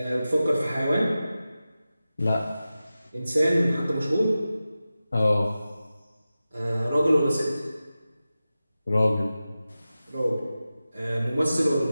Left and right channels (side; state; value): both; inverted; correlation -0.94